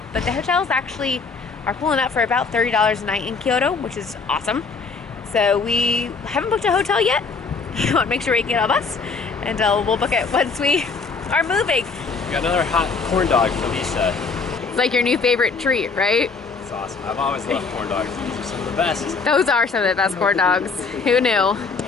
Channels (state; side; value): quieter; right; 4.7 dB